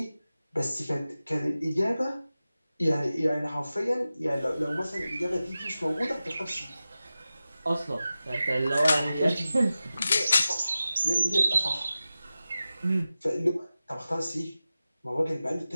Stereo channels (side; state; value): both; inverted; correlation -0.94